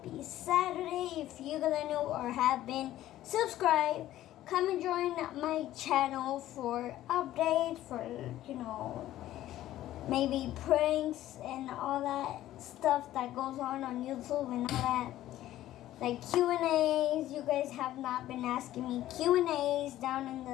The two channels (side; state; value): right; quieter; 13.9 dB